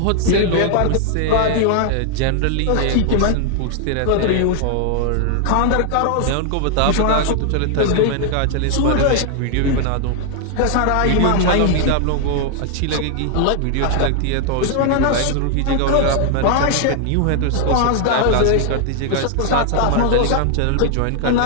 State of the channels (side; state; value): both; different; correlation 0.00